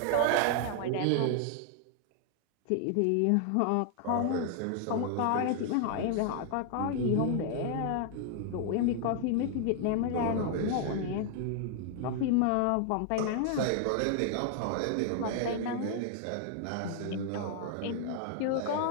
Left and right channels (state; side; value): different; both; correlation 0.00